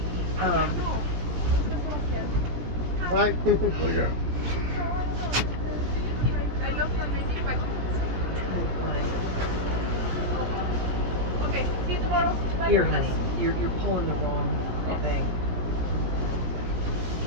Yeah. Right. Look at Here, honey, you're pulling the wrong Oh. thing.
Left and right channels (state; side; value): late; left; 17 ms